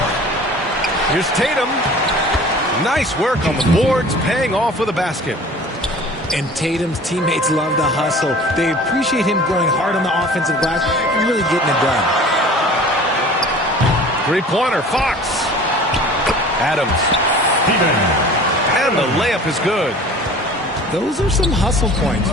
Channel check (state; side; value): normal; both; correlation 0.44